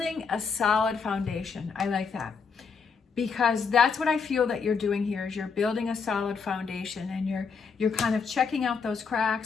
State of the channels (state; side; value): quieter; right; 5.5 dB